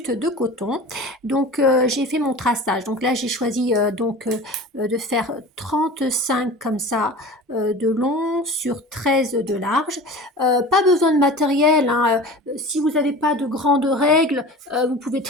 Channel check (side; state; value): both; normal; correlation 0.37